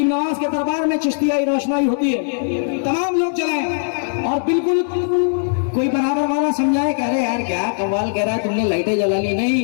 नवाज के दरबार में चिश्तियाई रोशनाई होती है, तमाम लोग चलाएं। और बिल्कुल कोई बराबर वाला समझाए, कह रहे यार क्या कव्वाल कह रहा है, तुमने लाइटें जला ली। नहीं,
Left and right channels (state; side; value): silent; right; 66 dB below the other